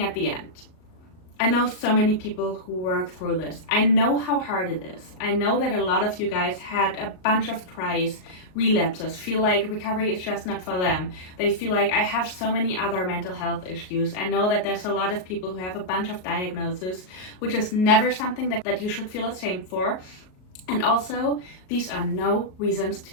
at the end, I know so many people who work through this. I know how hard it is. I know that a lot of you guys had a bunch of tries, relapses, feel like recovery is just not for them. They feel like, I have so many other mental health issues. I know that there's a lot of people who have a bunch of diagnoses, which is never something that you should feel ashamed for. And also, these are no reasons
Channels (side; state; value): right; late; 38 ms